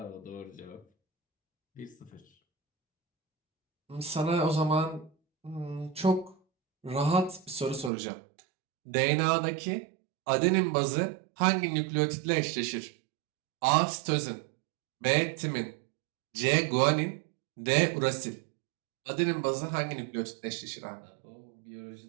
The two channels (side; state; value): left; drops out; at 7.9 s